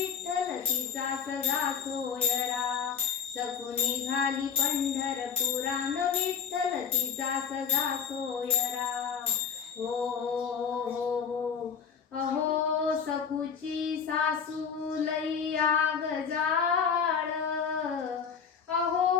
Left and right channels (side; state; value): right; quieter; 6.7 dB